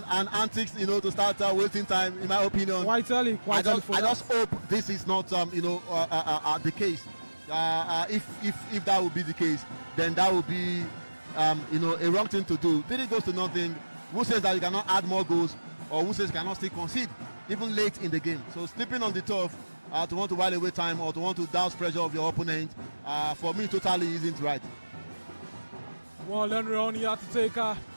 antics, to start waiting time. In my opinion, quite early. I just hope this is not, the case. If that would be the case, then that would be, a wrong thing to do. 3 goals to nothing. Who says that you cannot add more goals, or who says you cannot still concede, even late in the game? So sleeping on the turf to want to while away time or to want to douse pressure of your opponent, for me, totally isn't right. Well, Henry only had to take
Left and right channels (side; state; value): both; inverted; correlation -1.00